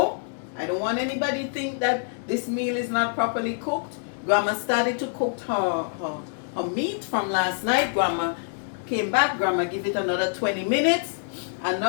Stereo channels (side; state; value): right; silent; digital silence